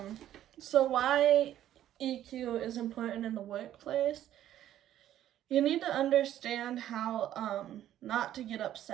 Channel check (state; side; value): quieter; left; 12.0 dB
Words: So why EQ is important in the workplace? You need to understand how not to get